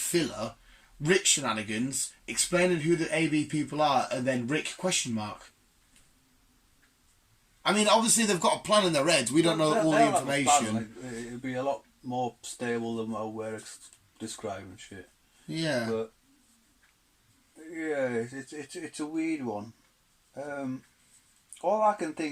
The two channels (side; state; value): both; identical; correlation 1.00